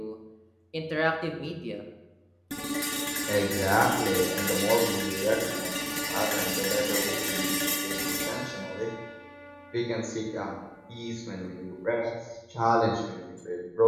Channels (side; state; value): both; identical; correlation 1.00